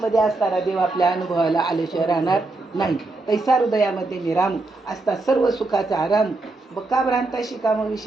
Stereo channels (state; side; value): quieter; left; 3.2 dB